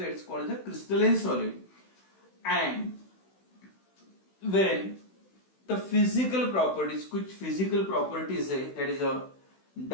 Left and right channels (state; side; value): late; right; 16 ms